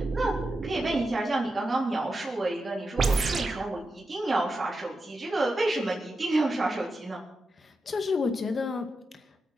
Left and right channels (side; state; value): both; normal; correlation 0.89